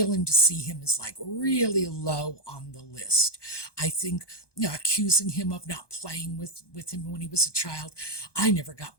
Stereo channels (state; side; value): late; right; 1.2 ms